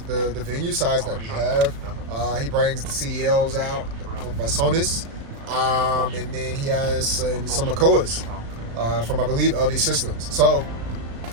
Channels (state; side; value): late; left; 35 ms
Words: venue size that we have. He brings the CDLs out by Sonus, and then he has some Makoas from, I believe, LD Systems. So